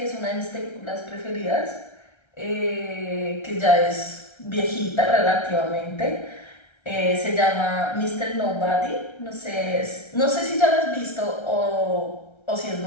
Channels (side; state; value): right; late; 1.3 ms